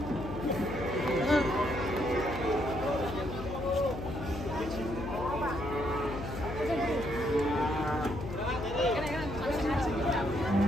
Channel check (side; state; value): left; noise; hum, 8 dB below the sound